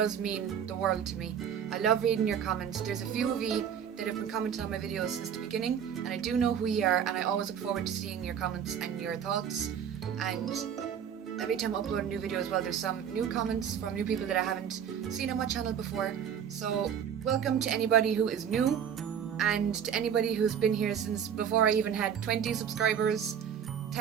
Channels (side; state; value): left; quieter; 8.3 dB